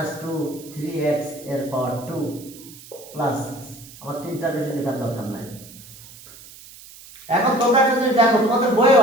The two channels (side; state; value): right; noise; hiss, 19 dB below the sound